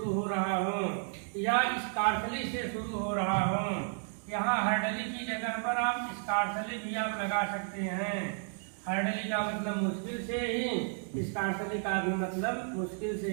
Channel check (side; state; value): left; silent; 56 dB below the other